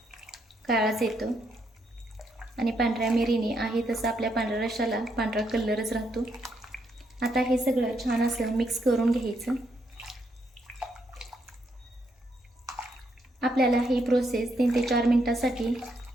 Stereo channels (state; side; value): normal; both; correlation 0.76